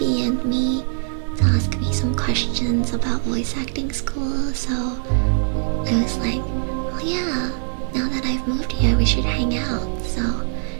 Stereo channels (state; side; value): silent; left; 64 dB below the other